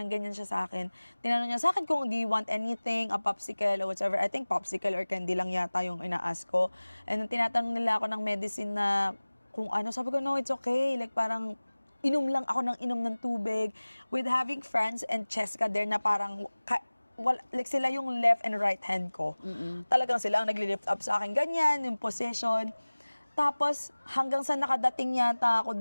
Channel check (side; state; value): both; inverted; correlation -1.00